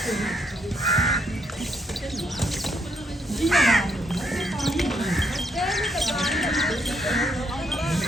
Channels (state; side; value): normal; both; correlation 0.74